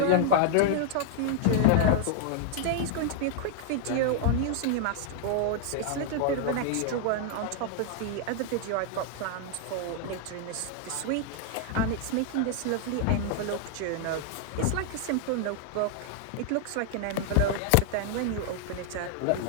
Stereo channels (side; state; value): both; different; correlation 0.00